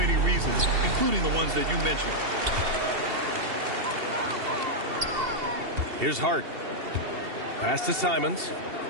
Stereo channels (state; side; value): late; left; 2.7 ms